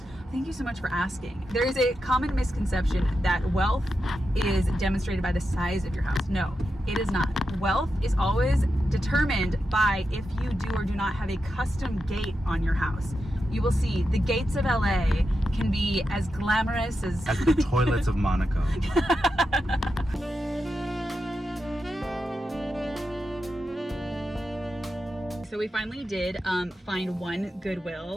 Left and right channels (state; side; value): normal; both; correlation 0.88